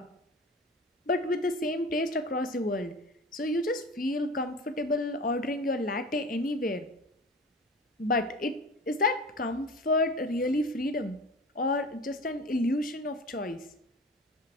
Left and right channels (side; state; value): both; normal; correlation 0.36